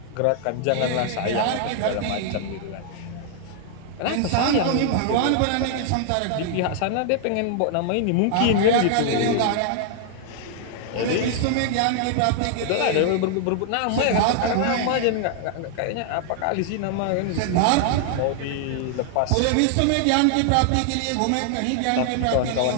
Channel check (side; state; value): both; different; correlation -0.01